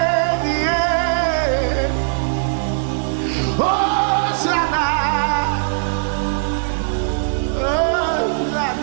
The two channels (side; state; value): left; silent; digital silence